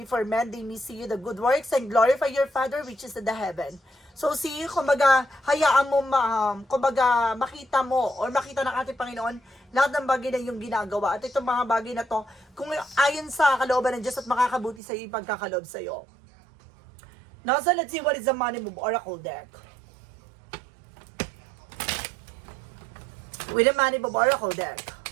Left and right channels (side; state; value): left; drops out; at 14.8 s